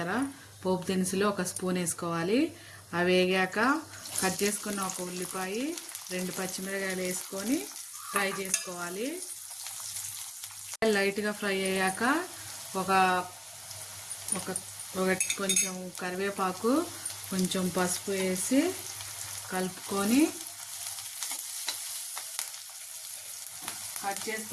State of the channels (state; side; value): identical; both; correlation 1.00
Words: పోపు దినుసులు ఒక స్పూన్ వేసుకోవాలి. అవి వేగాక కట్ చేసుకున్న ఒక ఉల్లిపాయ 2 పచ్చిమిరకాయలు వేసుకొని ఫ్రై చేసుకోవాలి. లైట్గా ఫ్రై అయ్యాక ఒక కొంచెం కరివేపాకు కొంచెం పసుపు వేసి కలుపుకొని కట్ చేసి